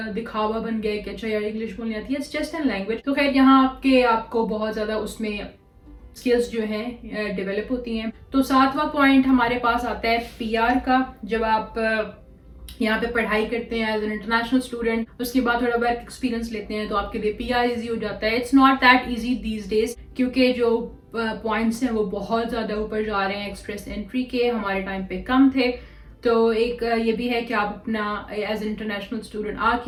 دکھاوا بن گیا کہ اچھا یار انگلش بولنی آتی ہے, اٹس جسٹ این لینگویج. تو خیر یہاں آپ کو بہت زیادہ اس میں اسکلز جو ہیں ڈیولپ ہوتی ہیں. تو 7واں پوائنٹ ہمارے پاس آتا ہے پی آر کا. جب آپ یہاں پہ پڑھائی کرتے ہیں ایز این انٹرنیشنل اسٹوڈنٹ, اس کے بعد تھوڑا ورک ایکسپیرینس لیتے ہیں تو آپ کے لیے پی آر ایزی ہو جاتا ہے. It's not that easy these days کیونکہ جو پوائنٹس ہیں وہ بہت زیادہ اوپر جا رہے ہیں ایکسپریس انٹری کے, ہمارے ٹائم پہ کم تھے. تو ایک یہ بھی ہے کہ آپ اپنا ایز این انٹرنیشنل اسٹوڈنٹ آ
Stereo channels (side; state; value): both; identical; correlation 1.00